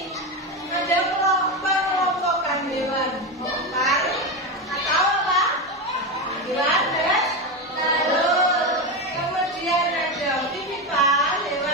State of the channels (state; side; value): normal; both; correlation 0.15